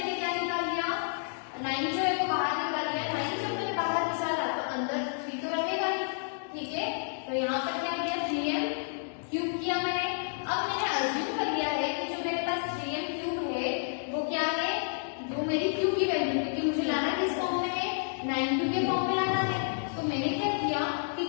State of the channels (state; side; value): silent; right; digital silence